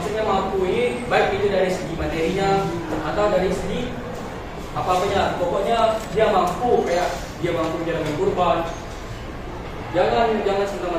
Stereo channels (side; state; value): both; identical; correlation 1.00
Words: mampu ini baik itu dari segi materinya atau dari segi apa-apanya. Pokoknya dia mampu kayak dia mampu menjalankan kurban. Jangan